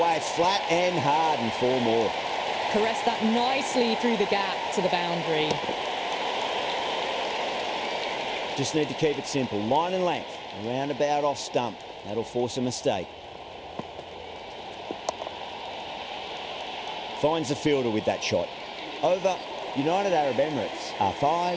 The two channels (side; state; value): both; identical; correlation 1.00